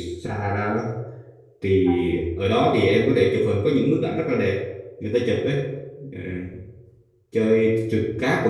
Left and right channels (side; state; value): both; identical; correlation 1.00